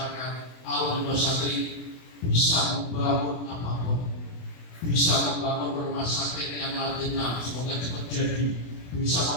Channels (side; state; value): right; late; 24 ms